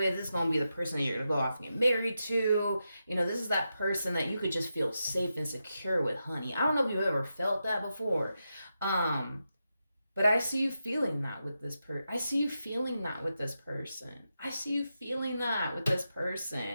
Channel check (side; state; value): both; inverted; correlation -0.88